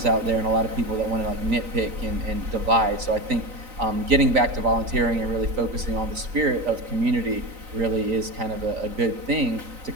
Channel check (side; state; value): left; late; 3.9 ms